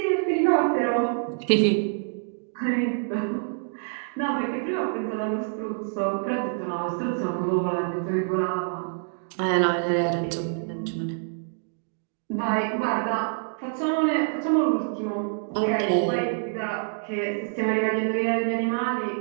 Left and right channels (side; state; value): left; silent; digital silence